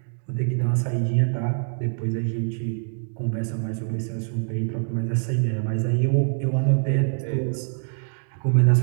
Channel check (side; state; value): left; silent; digital silence